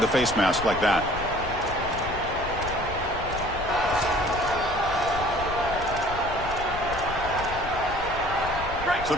face mask like that. So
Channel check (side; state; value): left; noise; rumble, 10 dB below the sound